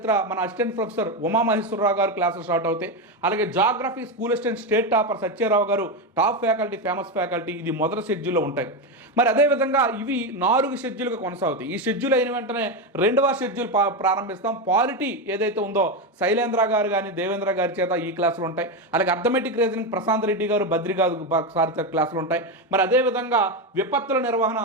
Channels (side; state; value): both; normal; correlation 0.12